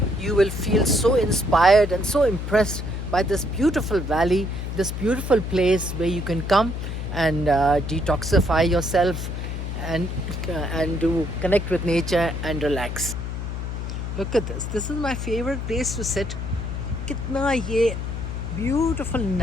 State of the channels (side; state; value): left; noise; hum, 5 dB below the sound